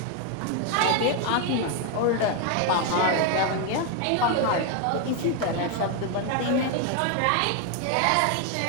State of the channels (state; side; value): different; both; correlation 0.01